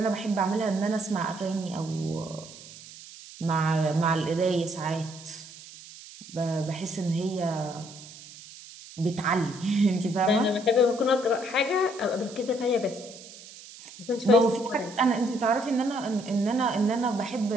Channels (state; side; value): noise; right; hiss, 17 dB below the sound